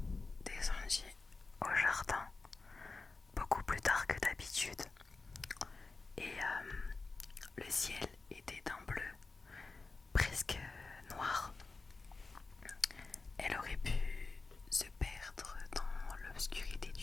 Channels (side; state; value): right; quieter; 3.8 dB